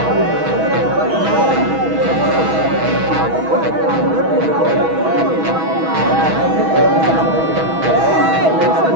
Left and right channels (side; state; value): left; late; 6.2 ms